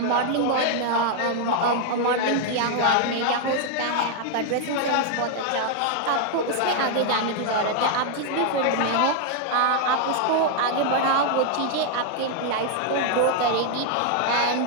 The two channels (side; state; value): both; different; correlation 0.00